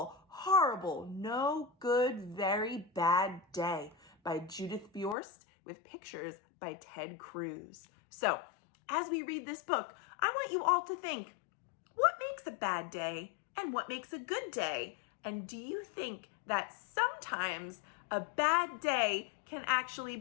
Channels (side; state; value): right; drops out; at 5.2 s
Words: Horrible, No Good, Very Bad Day by Judith Viorst with pictures by Ray Cruz. So, as we read this book, I want you all to think, what makes a bad day and what makes a good day? And do you think that sometimes a bad day can